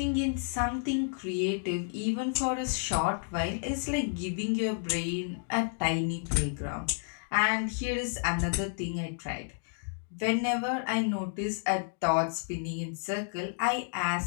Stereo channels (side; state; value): right; silent; digital silence